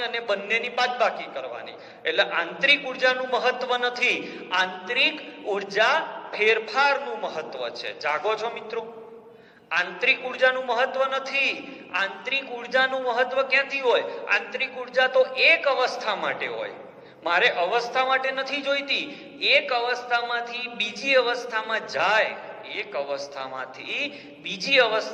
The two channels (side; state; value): both; identical; correlation 1.00